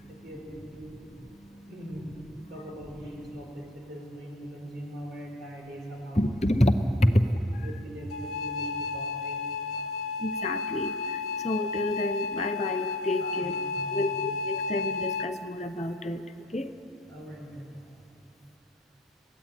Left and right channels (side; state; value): both; normal; correlation 0.49